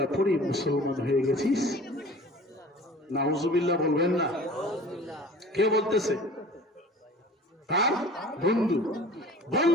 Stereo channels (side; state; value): both; normal; correlation 0.44